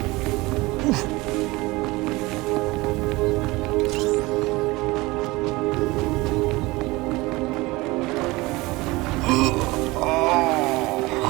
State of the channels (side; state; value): left; quieter; 21.7 dB